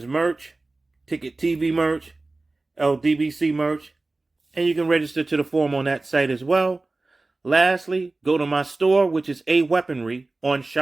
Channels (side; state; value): left; quieter; 3.2 dB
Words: merch, Ticket TV merch, LDBC merch, and you can register to the forum on that site as well. Lastly, go to my store, which is A Weaponry on